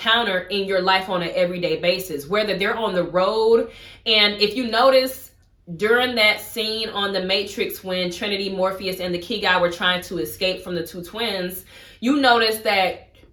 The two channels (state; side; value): identical; both; correlation 1.00